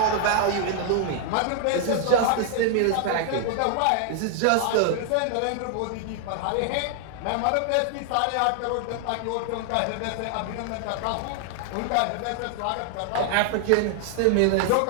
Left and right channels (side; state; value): both; different; correlation 0.00